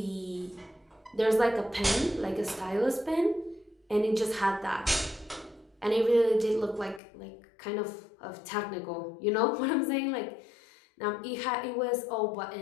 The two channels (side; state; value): right; drops out; at 7.0 s